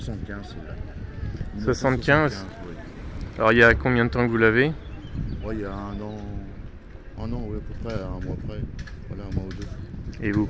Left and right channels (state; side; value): identical; both; correlation 1.00